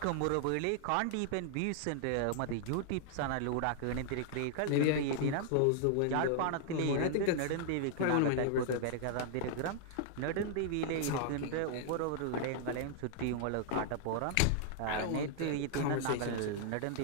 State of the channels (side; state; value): both; different; correlation -0.01